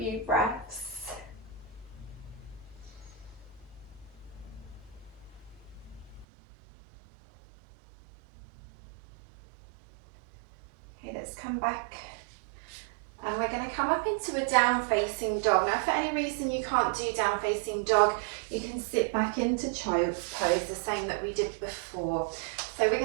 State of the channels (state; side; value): drops out; left; at 6.2 s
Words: breaths. Okay, let's come back. And we're going to come up into a down facing dog. Now if for any reason you can't do down facing dog, you can sit back into child's pose, the same that we did before. So we're